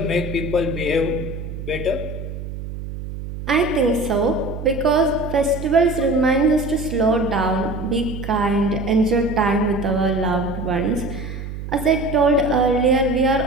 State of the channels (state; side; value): noise; right; hum, 9 dB below the sound